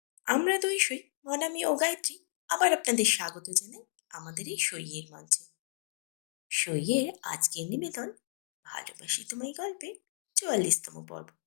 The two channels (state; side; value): silent; right; digital silence